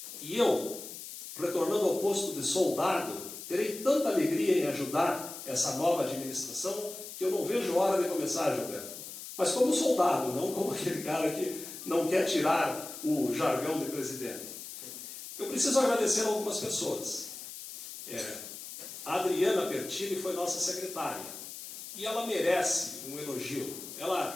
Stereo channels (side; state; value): left; noise; hiss, 11 dB below the sound